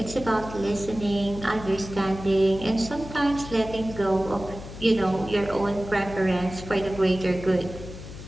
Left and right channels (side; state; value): left; noise; hum, 12 dB below the sound